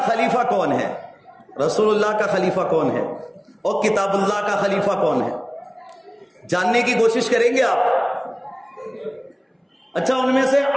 خلیفہ کون ہے، رسول اللہ کا خلیفہ کون ہے اور کتاب اللہ کا خلیفہ کون ہے، جاننے کی کوشش کریں گے آپ؟ اچھا، ان میں سے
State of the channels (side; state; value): both; identical; correlation 1.00